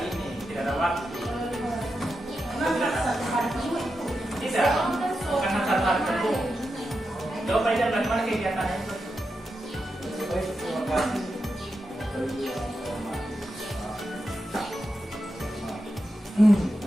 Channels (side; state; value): both; normal; correlation 0.88